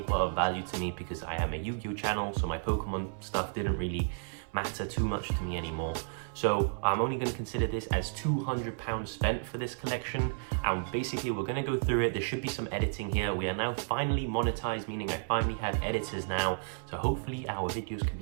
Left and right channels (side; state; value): left; silent; 56 dB below the other